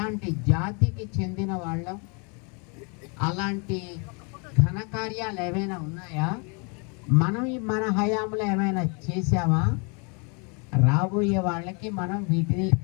జాతికి చెందిన వాళ్ళం, అలాంటి ఘనకార్యాలు ఏమైనా ఉన్నాయా, మనం మన హయాంలో ఏమైనా చేసామా, రాబోయే వాళ్ళకి మనం వీటిని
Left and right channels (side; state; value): right; quieter; 34.3 dB